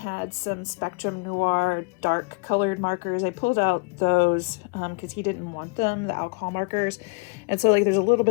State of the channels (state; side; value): quieter; right; 31.9 dB